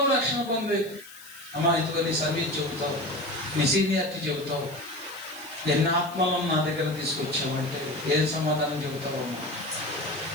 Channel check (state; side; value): noise; left; hiss, 19 dB below the sound